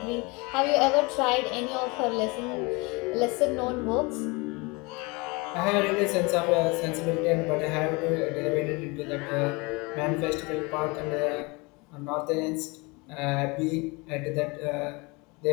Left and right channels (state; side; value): quieter; right; 27.0 dB